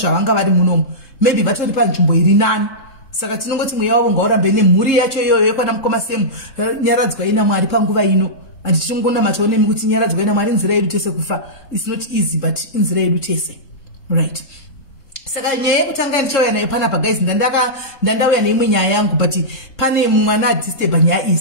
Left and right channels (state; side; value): late; right; 3.7 ms